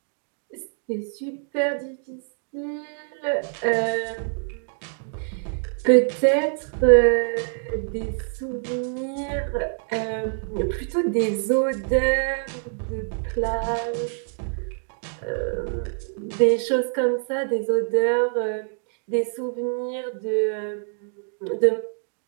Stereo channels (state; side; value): silent; left; 62 dB below the other